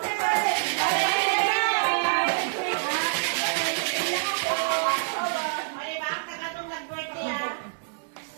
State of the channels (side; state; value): left; silent; digital silence